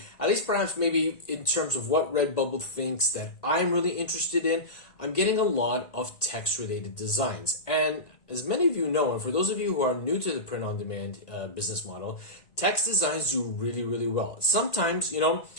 at least perhaps maybe in terms of what Redbubble thinks that I'm really interested in, I'm getting a lot of text-related designs. And as many of you know, and for those of you who are new to the print-on-demand business model, text designs do really, really well. Sometimes,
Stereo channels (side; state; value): right; late; 1.9 ms